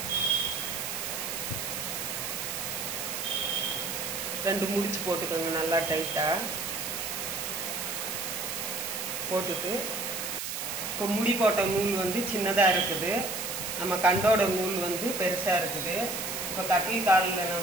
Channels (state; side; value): noise; right; hiss, 4 dB below the sound